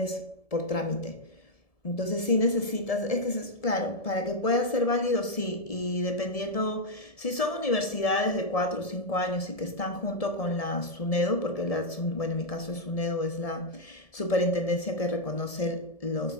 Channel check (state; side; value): late; right; 1.7 ms